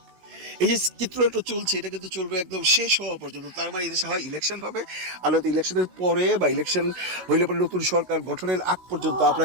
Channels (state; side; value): late; left; 16 ms